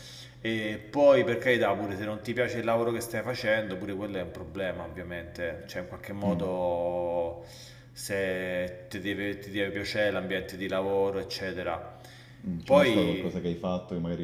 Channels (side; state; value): both; identical; correlation 1.00